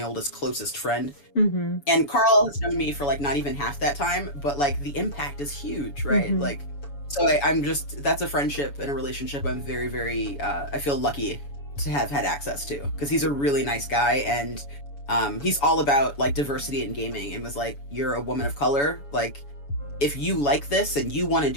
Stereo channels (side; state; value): right; late; 7.0 ms